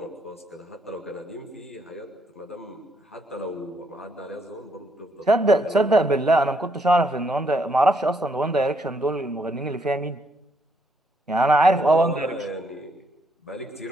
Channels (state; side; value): normal; both; correlation 0.73